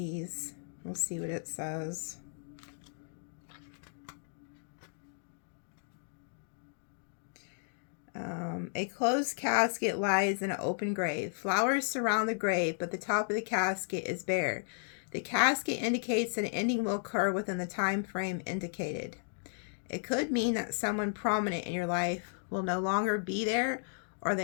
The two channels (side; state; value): right; silent; digital silence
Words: We'll see what it says. A closed casket lies in an open grave. Flowers surround the grave, but the top of the casket is bare. The casket indicates that an ending will occur within the time frame indicated. It could mean that someone prominent in your life will no longer be there or